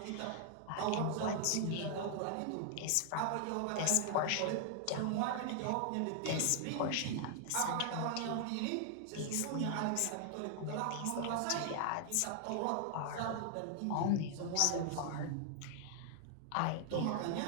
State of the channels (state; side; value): different; both; correlation 0.00